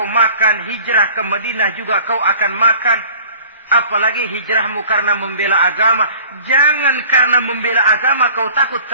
makan, hijrah ke Madinah juga kau akan makan. Apalagi hijrahmu karena membela agama. Jangan karena membela agama kau takut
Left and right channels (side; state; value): both; inverted; correlation -0.47